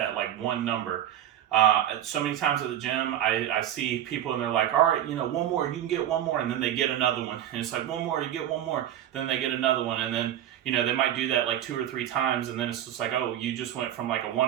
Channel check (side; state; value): left; quieter; 11.3 dB